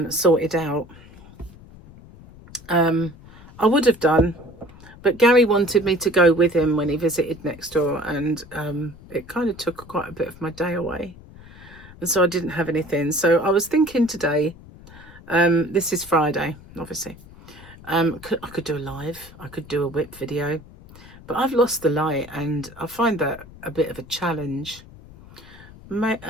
sorted out. I would have done, but Gary wanted me to go with him when he visited next door, and it kind of took quite a bit of my day away, and so I didn't have anything. So I was thinking today, this is Friday, obviously, I could do a live, I could do a WIP video, but I've lost the light, and I find that a bit of a challenge.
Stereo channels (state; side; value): noise; left; rumble, 20 dB below the sound